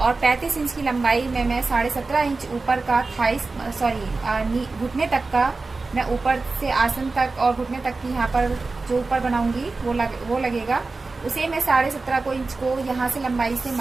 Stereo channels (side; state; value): left; quieter; 3.8 dB